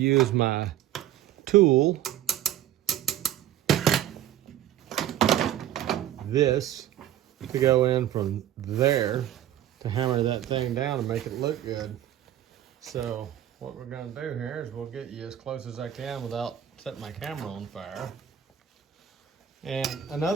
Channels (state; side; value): quieter; left; 11.6 dB